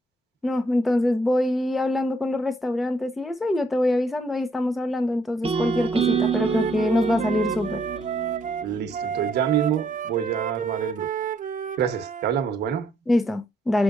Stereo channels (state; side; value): normal; both; correlation 0.70